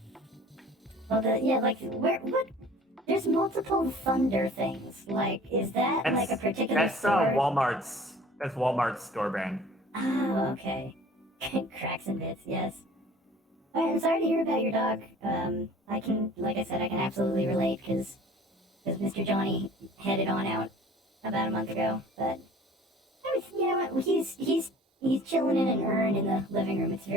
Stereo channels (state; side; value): normal; both; correlation 0.48